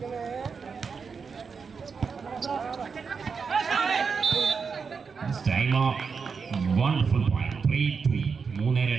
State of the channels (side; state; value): left; quieter; 5.5 dB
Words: Wonderful point. 3-2.